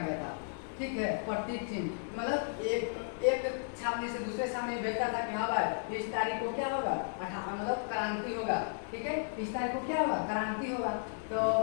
था, ठीक है। प्रतीक चिन्ह मतलब एक छावनी से दूसरे छावनी भेजता था कि हाँ भाई इस तारीख को क्या होगा, मतलब क्रांति होगा, ठीक है। इस तारीख को क्या होगा, क्रांति होगा। तो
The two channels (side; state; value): right; silent; digital silence